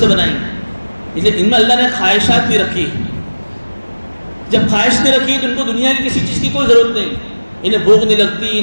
بنائی, اس لیے ان میں اللہ نے خواہشات بھی رکھی. جب خواہش نہیں رکھی تو ان کو دنیا کی کسی چیز کی کوئی ضرورت نہیں, انہیں بھوک نہیں لگتی,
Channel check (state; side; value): inverted; both; correlation -1.00